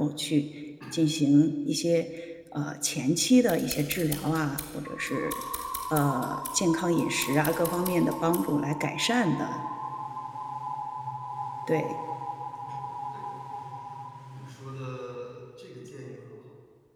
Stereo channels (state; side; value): identical; both; correlation 1.00